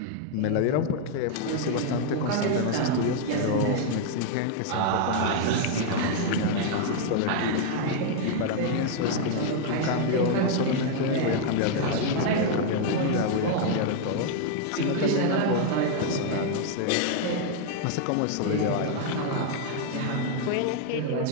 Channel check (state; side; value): different; both; correlation 0.00